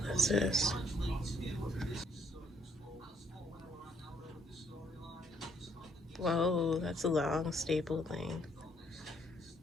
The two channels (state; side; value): normal; both; correlation 0.68